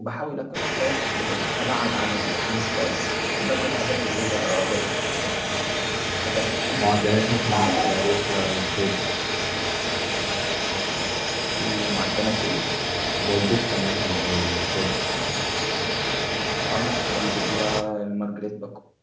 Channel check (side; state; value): both; identical; correlation 1.00